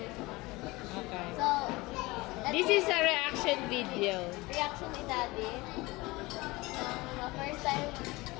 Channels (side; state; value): right; quieter; 21.9 dB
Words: Okay. So, This is a reaction video. reaction ni Daddy.